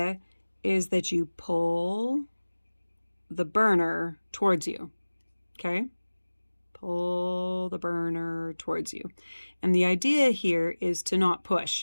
is that you pull the burner towards you, okay? Pull the burner towards you. And the idea here is to not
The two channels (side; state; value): both; inverted; correlation -1.00